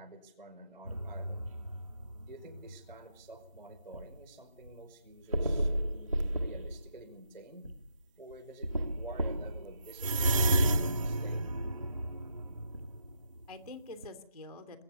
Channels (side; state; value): both; inverted; correlation -0.79